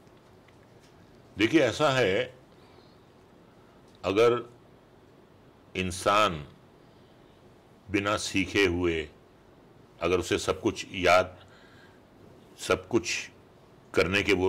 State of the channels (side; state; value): both; identical; correlation 1.00